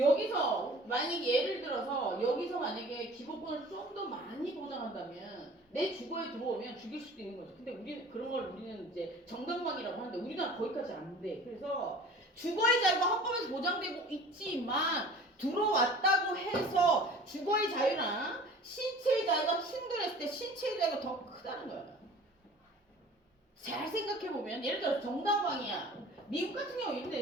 만약에 예를 들어서 여기서 만약에 기본권을 좀 더 많이 보장한다면 내 주거에 들어오면 죽일 수도 있는 거죠. 근데 우리는 이제 정당방위라고 하는데 우리나라 거기까지 안 돼. 그래서 주거의 자유가 헌법에서 보장되고 있지만 들어왔다고 해서 주거의 자유랑 신체의 자유가 충돌했을 때 신체의 자유가 더 크다는 거야. 잘 생각해보면 예를 들어 정당방위야. 미국 같은 경우 이렇게 돼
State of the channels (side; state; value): both; normal; correlation 0.45